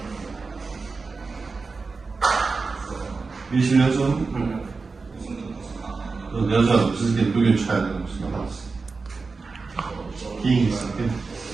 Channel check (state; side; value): quieter; left; 4.3 dB